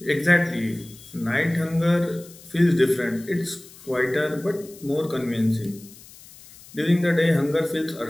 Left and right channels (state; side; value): noise; left; hiss, 21 dB below the sound